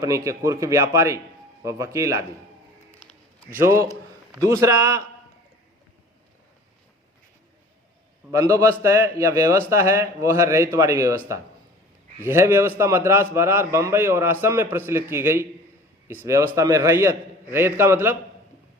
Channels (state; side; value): normal; both; correlation 0.45